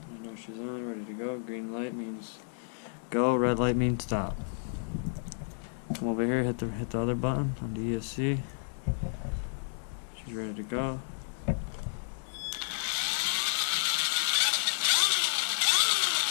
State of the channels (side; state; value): right; silent; digital silence